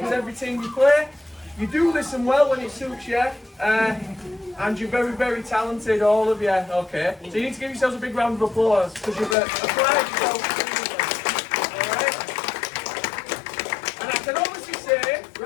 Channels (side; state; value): right; drops out; at 9.3 s